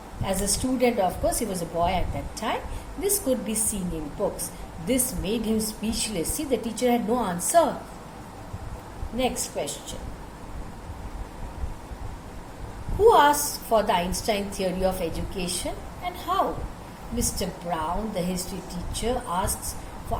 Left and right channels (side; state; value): both; identical; correlation 1.00